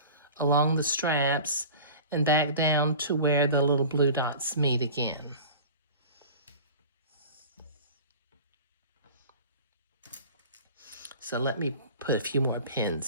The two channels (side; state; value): both; inverted; correlation -0.38